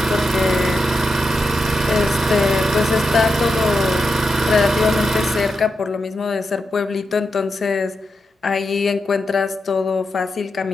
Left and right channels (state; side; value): normal; both; correlation 0.87